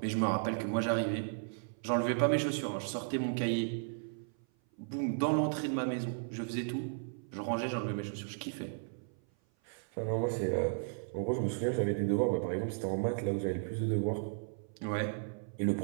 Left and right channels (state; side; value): silent; left; 55 dB below the other